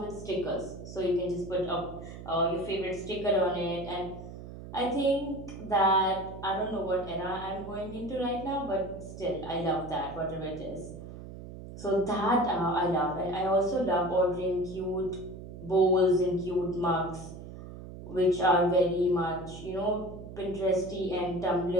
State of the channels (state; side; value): noise; right; hum, 12 dB below the sound